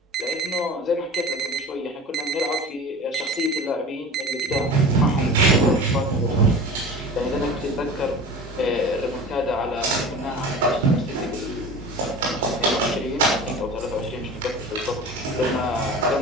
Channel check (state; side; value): normal; both; correlation 0.36